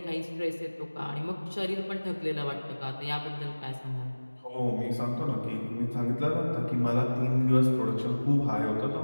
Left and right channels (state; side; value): inverted; both; correlation -1.00